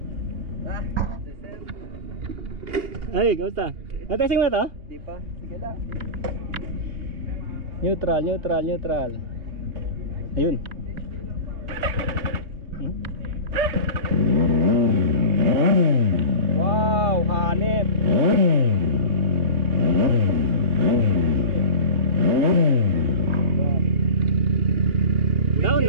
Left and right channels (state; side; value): late; left; 3.0 ms